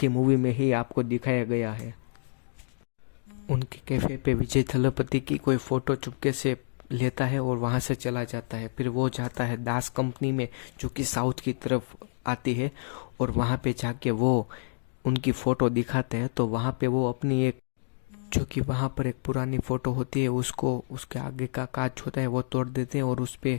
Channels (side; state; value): right; silent; digital silence